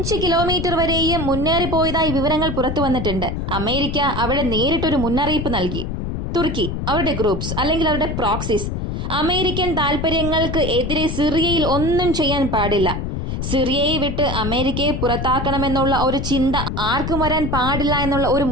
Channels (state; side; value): noise; left; rumble, 3 dB below the sound